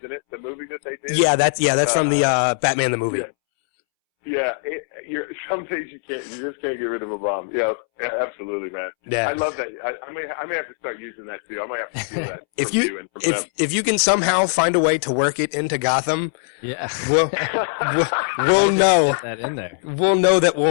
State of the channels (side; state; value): right; silent; 65 dB below the other